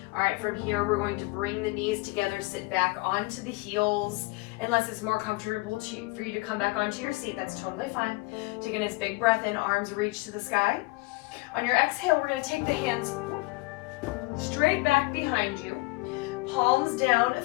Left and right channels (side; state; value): right; quieter; 23.9 dB